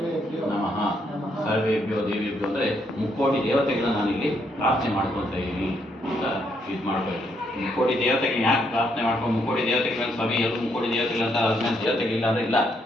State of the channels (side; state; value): both; normal; correlation 0.74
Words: ನಮಃ. ಸರ್ವೇಭ್ಯೋ ದೇವೇಭ್ಯೋ ಅಂದರೆ ಮುಕ್ಕೋಟಿ ದೇವತೆಗಳನ್ನ ನಾನಿಲ್ಲಿ ಪ್ರಾರ್ಥನೆ ಮಾಡ್ಕೊಳ್ತಾ ಇದ್ದೀನಿ ಅಂತ ಇದು ಮಾಡ್ಕೋಬೇಕು. ಮುಕ್ಕೋಟಿ ದೇವತೆಗಳನ್ನ ಯಾಕೆ ಪ್ರಾರ್ಥನೆ ಮಾಡ್ಕೊಂಡು ಮುಕ್ಕೋಟಿ ದೇವತೆಗಳನ್ನ ಸ್ವಾಮಿ ಎಲ್ಲರೂ ಮುಕ್ಕೋಟಿ ದೇವತೆಗಳಂತ ಅದ್ಮೇಲೆ ದೇವತೆಗಳಿಲ್ಲ ಅಂದರೆ ಇಲ್ಲ.